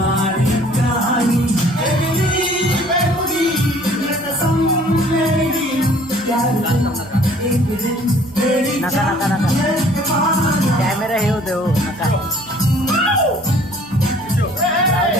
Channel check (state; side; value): noise; right; hum, 25 dB below the sound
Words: कहानी नका नका नका कॅमेरा हे होते हो नका